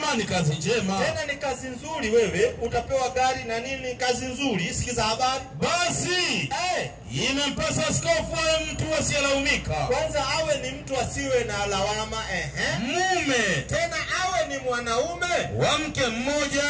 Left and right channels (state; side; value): identical; both; correlation 1.00